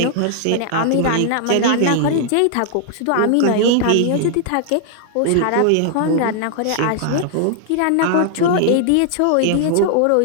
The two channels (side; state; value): both; different; correlation 0.00